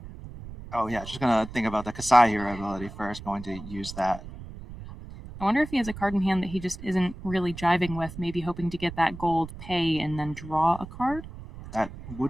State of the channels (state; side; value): noise; right; rumble, 13 dB below the sound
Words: gonna think about the Kasai hero ability first. Going to use that. I wonder if he has a card in hand that he just isn't really jiving with, maybe hoping to get that gold pay and then draw a card. That